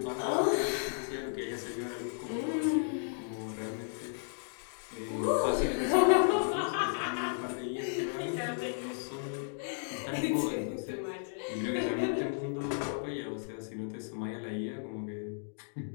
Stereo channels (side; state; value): right; silent; digital silence